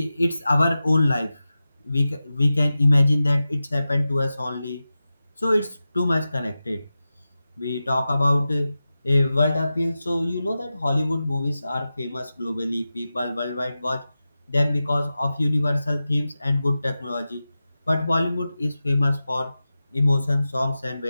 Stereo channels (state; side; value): inverted; both; correlation -0.93